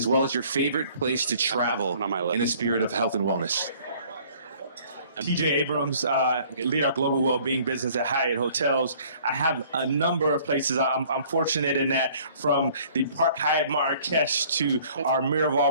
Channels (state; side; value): inverted; both; correlation -0.55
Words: well as your favorite place to travel in the spirit of health and wellness? TJ Abrams, lead our global well-being business at Hyatt Hotels. I have a number of places. I'm fortunate in that, from the Park Hyatt Marrakesh to our Miraval